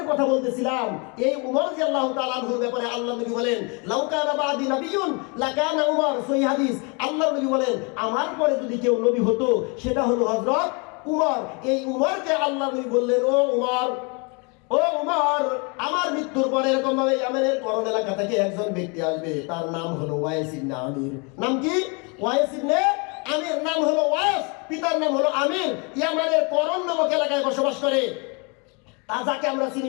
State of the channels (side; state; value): right; quieter; 32.4 dB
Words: কথা বলতেছিলাম, এই উমর রাদিয়াল্লাহু তাআলা আনহুর ব্যাপারে আল্লাহ নবী বলেন লাউ কানা বাদি নাবিয়্যুন লাকানা উমর। সহিহ হাদিস। আল্লাহ নবী বলেন আমার পরে যদি কেউ নবী হতো সেটা হলো হযরত উমর। এই উমরকে আল্লাহ নবী বললেন ও উমর, আমার মৃত্যুর পরে এরকম ভাবে ইয়ামেনের করণ এলাকা থেকে একজন ব্যক্তি আসবে, তার নাম হলো ওয়াইস ইবনে আমির। নাম কি? ওয়াইস ইবনে আমির। নাম হলো ওয়াইস, পিতার নাম হলো আমির। ইয়ামানের করণ নামক এলাকায় বসবাস করে, তা যাকে আমরা চিনি